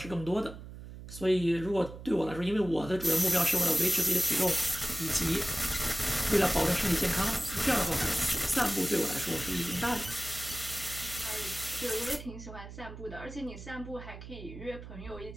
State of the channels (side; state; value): right; noise; hum, 13 dB below the sound